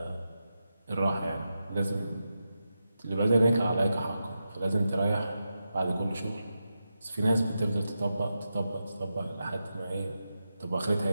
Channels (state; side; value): inverted; both; correlation -0.89